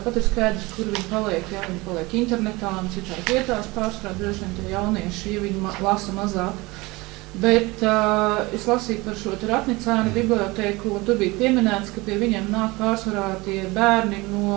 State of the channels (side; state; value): left; quieter; 22.8 dB